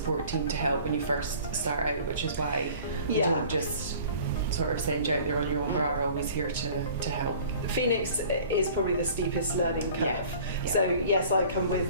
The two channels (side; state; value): both; inverted; correlation -0.47